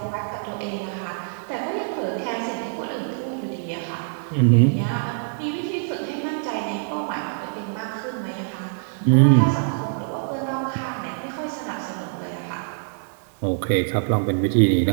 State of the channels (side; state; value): left; silent; digital silence